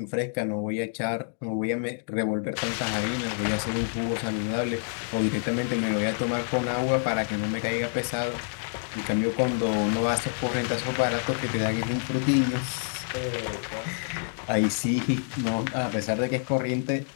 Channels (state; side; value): silent; right; 60 dB below the other